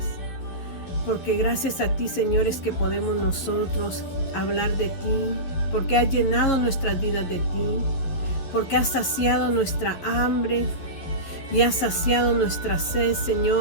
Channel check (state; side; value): late; right; 11 ms